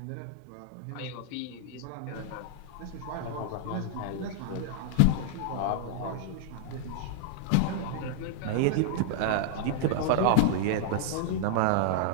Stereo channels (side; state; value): both; different; correlation -0.01